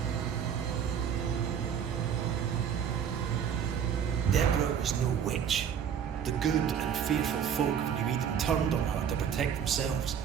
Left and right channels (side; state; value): left; quieter; 8.2 dB